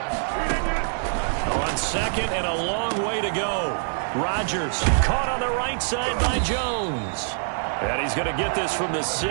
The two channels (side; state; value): left; silent; digital silence